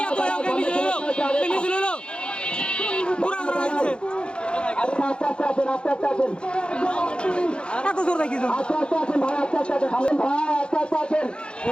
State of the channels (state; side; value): late; right; 0.055 ms